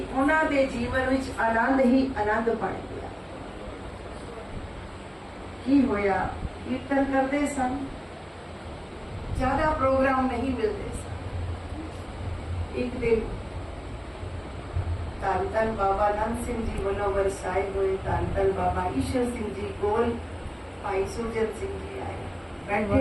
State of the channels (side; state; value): both; identical; correlation 1.00